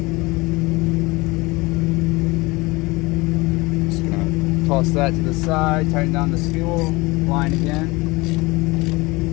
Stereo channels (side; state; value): right; quieter; 23.2 dB